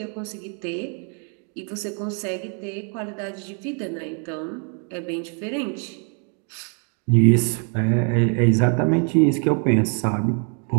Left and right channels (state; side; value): quieter; left; 39.9 dB